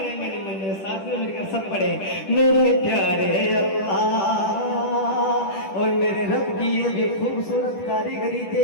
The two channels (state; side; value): late; right; 10 ms